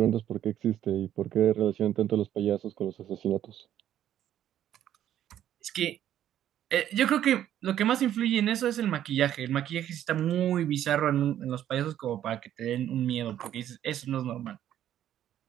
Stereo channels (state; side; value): quieter; left; 11.2 dB